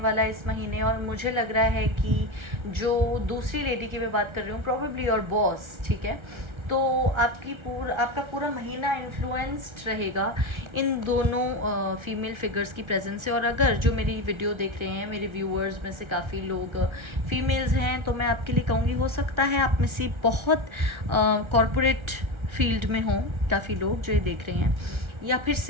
है इस महीने। और मुझे लग रहा है कि जो दूसरी लेडी की मैं बात कर रही हूँ, प्रॉबेबली योर बॉस, ठीक है, तो आपका पूरा महीना इन्फ्लुएंस्ड रहेगा इन दोनों फीमेल फिगर्स की प्रेजेंस से। और अगर जो मेरी वीडियो देख रहे हैं, मेरे व्यूअर्स में से काफ़ी लोग फीमेल्स हैं, तो मैं आपके लिए कहूँगी, हो सकता है आप में से बहुत कॉरपोरेट फील्ड में हों काफ़ी लोग जो ये देख रहे हैं, या फिर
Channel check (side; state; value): left; late; 1.4 ms